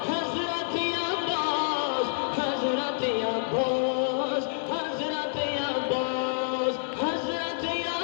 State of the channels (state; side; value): silent; right; digital silence